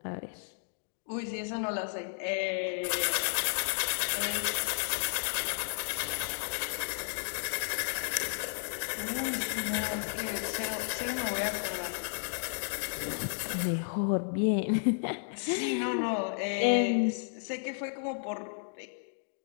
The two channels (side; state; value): right; silent; digital silence